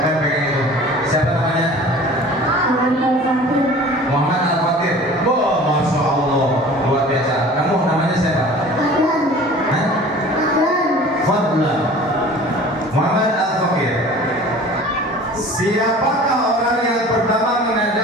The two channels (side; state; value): both; normal; correlation 0.44